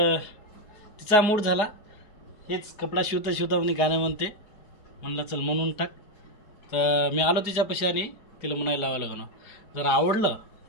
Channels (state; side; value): late; right; 4.8 ms